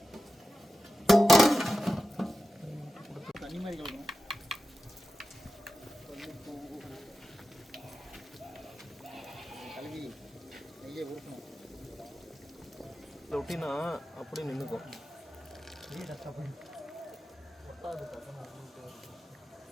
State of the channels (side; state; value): both; normal; correlation 0.93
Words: தண்ணி மாதிரி கலக்கணும். கலக்கி நெய்யை ஊற்றணும். ஒட்டினா அப்படியே நின்றுக்கும்.